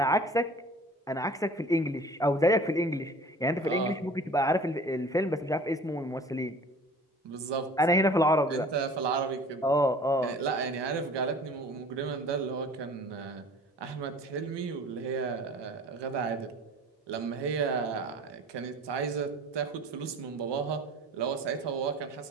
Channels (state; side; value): normal; both; correlation 0.46